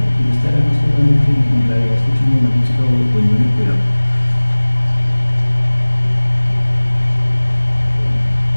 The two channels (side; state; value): both; inverted; correlation -1.00